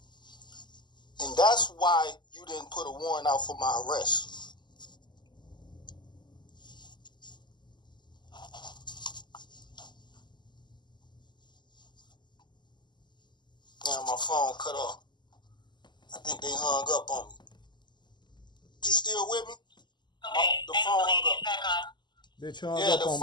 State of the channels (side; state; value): right; late; 0.21 ms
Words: And that's why you didn't put a warrant out for my arrest. Damn, my phone cut off. I think they hung up on me. You still with me? Okay, The phone hung up. back on. Bitch, you hung Yeah, up the on